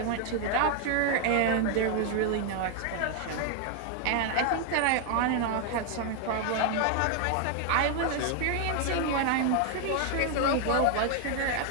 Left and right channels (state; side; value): different; both; correlation 0.00